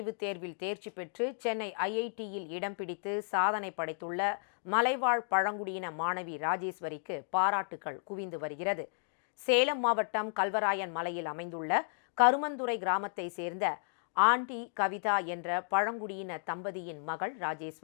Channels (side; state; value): right; silent; digital silence